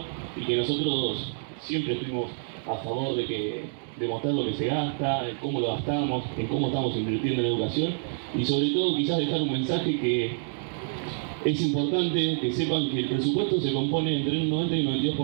y que nosotros siempre estuvimos a favor de mostrar lo que se gasta, en cómo lo gastamos, en cómo estamos invirtiendo en educación, y sobre todo quizás dejar un mensaje que es importante que sepan que el presupuesto se compone entre un 90 y un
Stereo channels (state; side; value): silent; left; digital silence